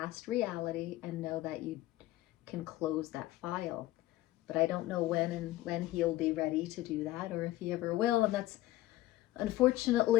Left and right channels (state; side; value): quieter; right; 16.1 dB